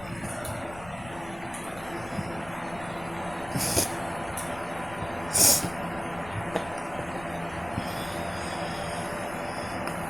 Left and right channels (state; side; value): noise; left; rumble, 17 dB below the sound